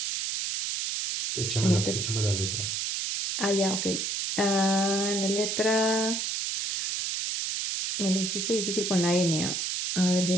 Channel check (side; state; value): right; noise; hiss, 1 dB below the sound